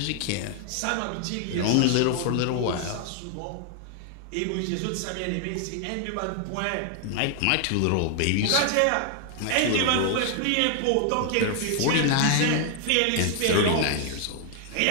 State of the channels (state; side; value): different; both; correlation 0.00